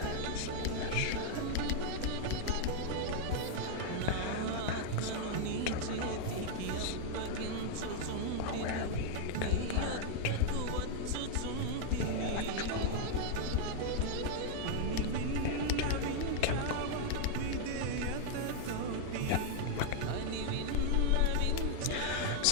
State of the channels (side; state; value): both; different; correlation 0.00